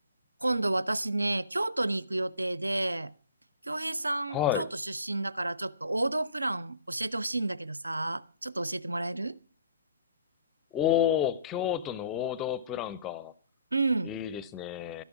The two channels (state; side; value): inverted; both; correlation -0.56